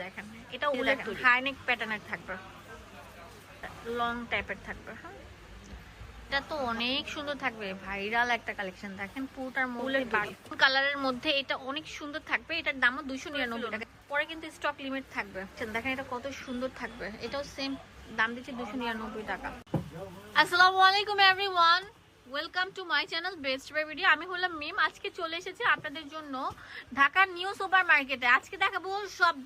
দেখেন, এটা উলের হাইনেক প্যাটার্নের থাকবে, লং টাইপের থাকবে। হ্যাঁ, এটা তো অনেক সুন্দর থাকবে, ভাইরাল একটা কালেকশন। দেখেন পুরোটার মধ্যে কালারের মধ্যে এটা অনেক সুন্দর থাকবে। এটার দামও 299 টাকা। পরে কিন্তু স্টক লিমিট থাকবে। দেখেন এটা কত সুন্দর থাকবে, এটাও সেম দাম দিচ্ছে 299 টাকা। আসসালামু আলাইকুম everyone, welcome to my channel Best Buy Video. আমি হলাম মিম। আজকে চলে এসেছি আপনাদের জন্য ঢাকার নিউ সুপার মার্কেটে। আজকে দেখাবো সব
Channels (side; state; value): both; identical; correlation 1.00